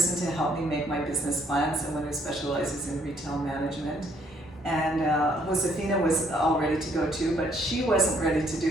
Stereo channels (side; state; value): both; normal; correlation 0.67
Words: to help me make my business plan, someone who specializes in retail management. And Josefina was all ready to go too, but she wasn't ready to